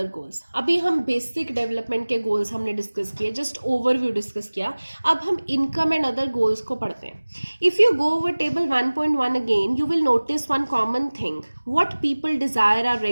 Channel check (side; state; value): both; inverted; correlation -1.00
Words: गोल्स। अभी हम बेसिक डेवलपमेंट के गोल्स हमने डिस्कस किए, जस्ट ओवरव्यू डिस्कस किया। अब हम इनकम एंड अदर गोल्स को पढ़ते हैं। If you go over table 1.1 again, you will notice one common thing. What people desire are